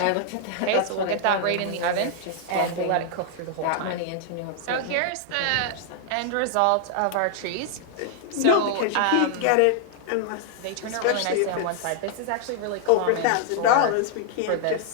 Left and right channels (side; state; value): both; different; correlation 0.00